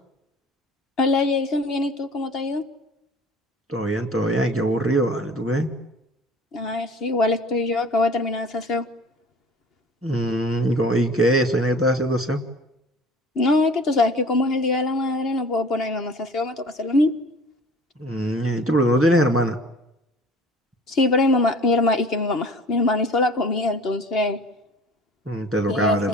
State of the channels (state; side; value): normal; both; correlation 0.46